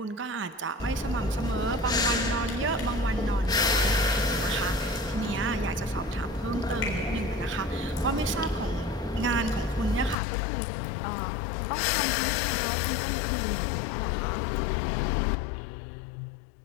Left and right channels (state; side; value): drops out; right; at 10.2 s